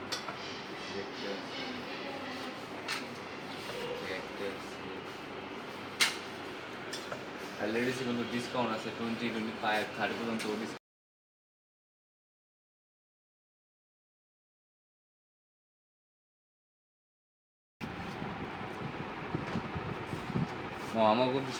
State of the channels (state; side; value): identical; both; correlation 1.00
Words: আর লেডিসে কিন্তু ডিসকাউন্ট আছে 20, 25, 30 পর্যন্ত ডিসকাউন্ট। আমার কিন্তু